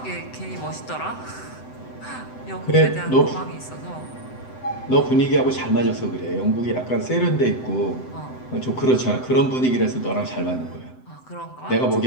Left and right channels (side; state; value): right; late; 7.8 ms